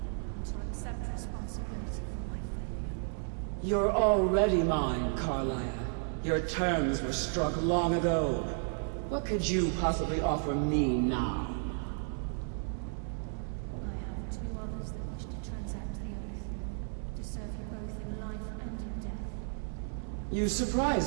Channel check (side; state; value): left; silent; 56 dB below the other